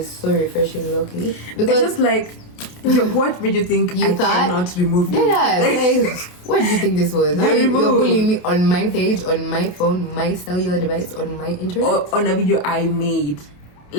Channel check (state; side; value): late; right; 28 ms